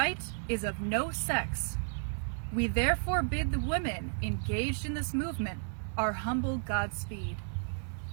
is of no sex. We therefore bid the women engaged in this movement our humble Godspeed.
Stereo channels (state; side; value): silent; left; digital silence